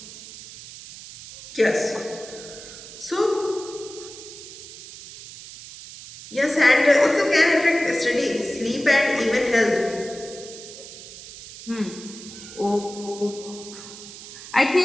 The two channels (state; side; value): noise; right; hiss, 15 dB below the sound